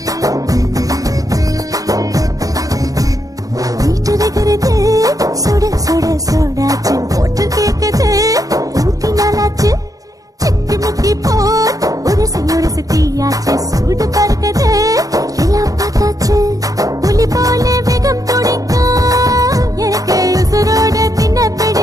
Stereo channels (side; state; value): left; late; 0.17 ms